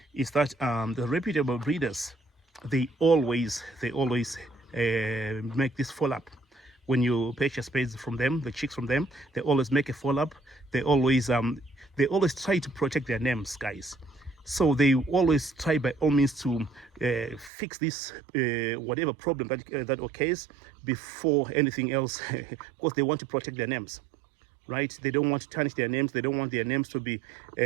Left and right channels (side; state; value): left; drops out; at 17.5 s